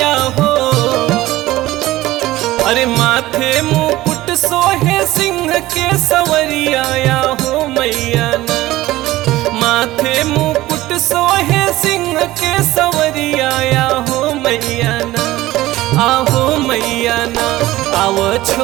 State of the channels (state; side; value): quieter; left; 16.9 dB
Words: हो। अरे माथे मुकुट सोहे सिंह के सवरिया या हो मैया ना, माथे मुकुट सोहे सिंह के सवरिया या हो मैया ना, आहो मैया ना, आव